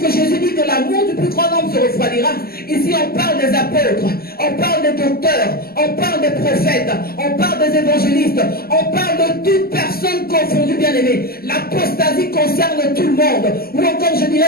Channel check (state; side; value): late; right; 0.44 ms